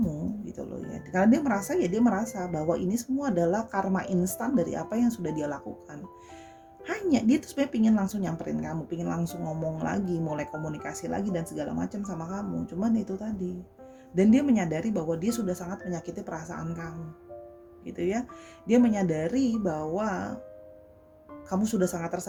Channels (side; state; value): both; identical; correlation 1.00